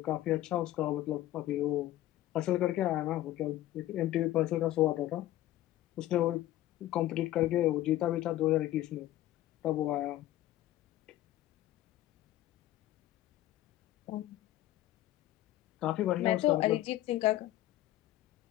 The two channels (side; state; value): right; quieter; 14.6 dB